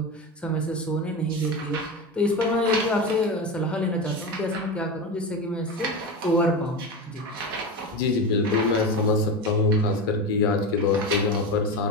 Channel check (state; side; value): normal; both; correlation 0.21